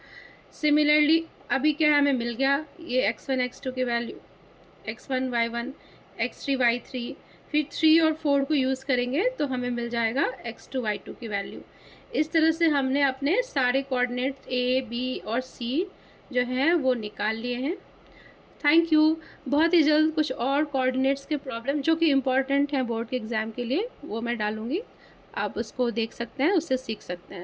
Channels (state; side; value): identical; both; correlation 1.00